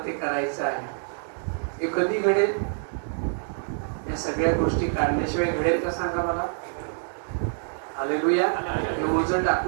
ते करायचं आहे. हे कधी घडेल? या सगळ्या गोष्टी काढल्याशिवाय घडेल का सांगा मला? हालेलुया. हे ओझं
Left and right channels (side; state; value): left; silent; digital silence